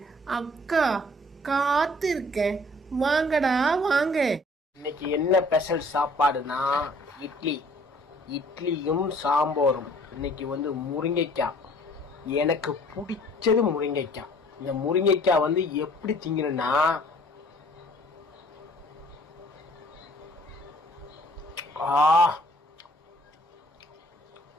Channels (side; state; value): both; normal; correlation 0.55